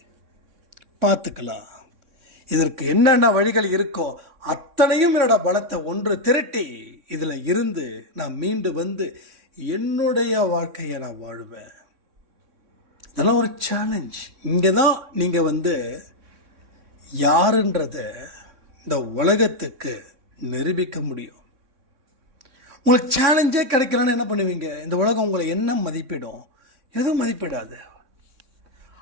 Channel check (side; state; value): left; late; 3.6 ms